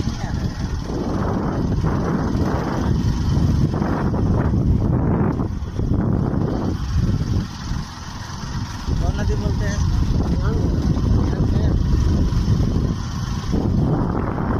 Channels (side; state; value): both; identical; correlation 1.00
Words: कौन नदी बोलते हैं?